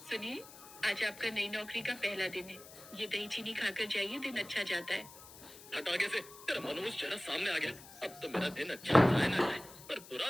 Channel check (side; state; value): left; noise; hiss, 18 dB below the sound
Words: सुनिए, आज आपका नई नौकरी का पहला दिन है। ये दही चीनी खाकर जाइए, दिन अच्छा जाता है। हट आगे से, तेरा मनोज चेहरा सामने आ गया। अब तो मेरा दिन अच्छा जाए ना जाए, पर